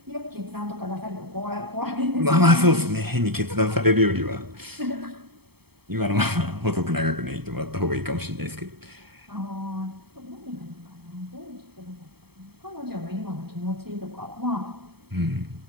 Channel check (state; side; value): late; left; 0.97 ms